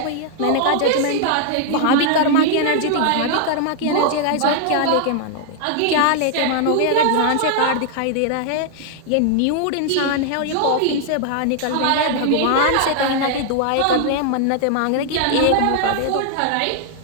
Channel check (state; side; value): different; both; correlation 0.00